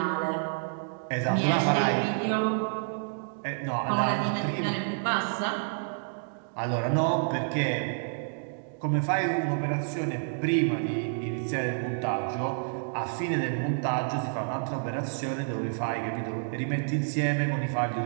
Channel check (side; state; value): left; silent; digital silence